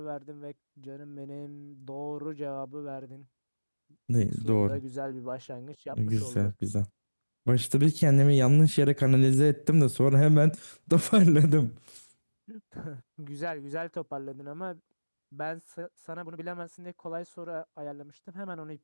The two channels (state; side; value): inverted; both; correlation -1.00